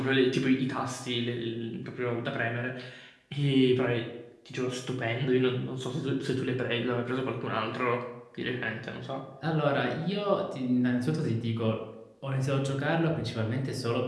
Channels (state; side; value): identical; both; correlation 1.00